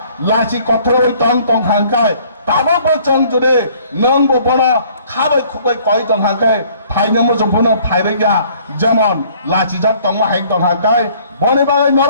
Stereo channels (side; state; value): both; inverted; correlation -0.58